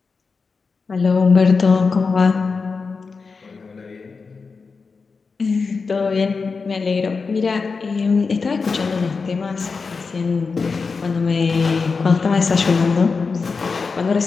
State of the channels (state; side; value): quieter; right; 4.7 dB